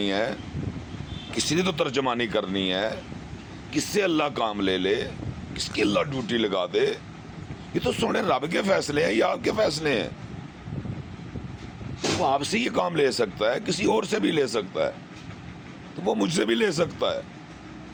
ہے, کسی نے تو ترجمانی کرنی ہے. کس سے اللہ کام لے لے, کس کی اللہ ڈیوٹی لگا دے. یہ تو سونے رب کے فیصلے ہیں یا آپ کے فیصلے ہیں. وہ آپ سے یہ کام لے سکتا ہے, کسی اور سے بھی لے سکتا ہے, تو وہ مجھ سے بھی لے سکتا ہے.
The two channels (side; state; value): both; identical; correlation 1.00